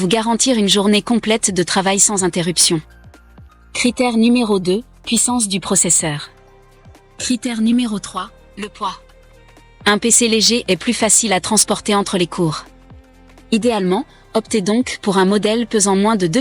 garantir une journée complète de travail sans interruption. Critère numéro 2, puissance du processeur. Critère numéro 3, le poids. Un PC léger est plus facile à transporter entre les cours. Idéalement, optez donc pour un modèle pesant moins de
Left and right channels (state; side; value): identical; both; correlation 1.00